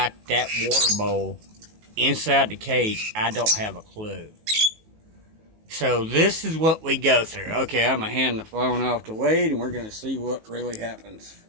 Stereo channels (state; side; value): late; left; 19 ms